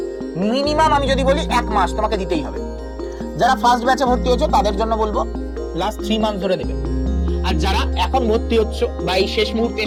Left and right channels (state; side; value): identical; both; correlation 1.00